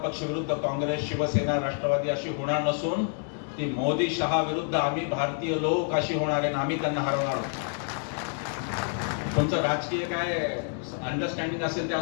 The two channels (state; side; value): silent; right; 55 dB below the other